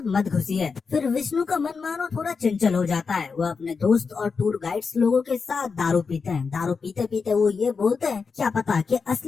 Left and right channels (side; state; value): right; quieter; 5.1 dB